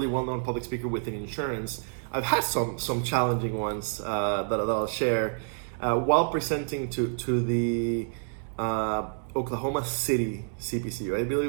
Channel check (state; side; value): silent; left; digital silence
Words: well-known public speaker within insurance, I've had some challenging ones that I'll share while presenting to the Oklahoma City CPCU. I